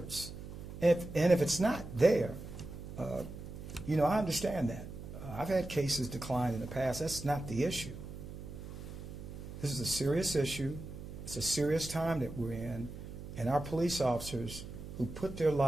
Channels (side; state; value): right; noise; hum, 11 dB below the sound